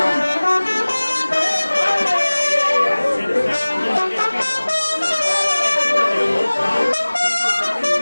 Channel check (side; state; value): both; inverted; correlation -1.00